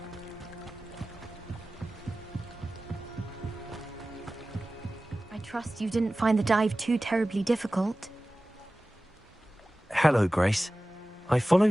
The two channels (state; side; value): normal; both; correlation 0.96